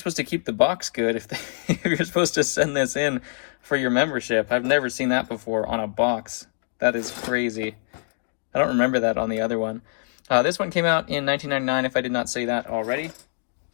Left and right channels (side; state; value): right; silent; digital silence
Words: to keep the box good if you're supposed to send this in for your membership? I've never seen that before on a box. That is crazy. I don't remember that on the other one. This one came out in 1999, if I did not say that already.